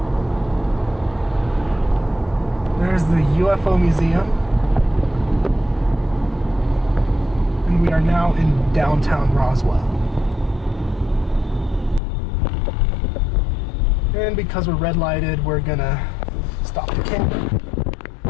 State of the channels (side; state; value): right; drops out; at 12.0 s